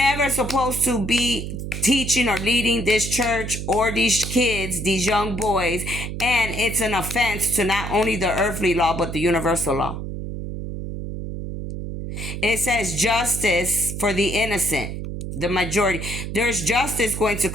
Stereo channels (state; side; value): noise; right; hum, 6 dB below the sound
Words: supposed to be teaching or leading this church or these kids, these young boys, and it's an offense to not only the earthly law but the universal law. It says justice for the innocent, the majority. There's justice going to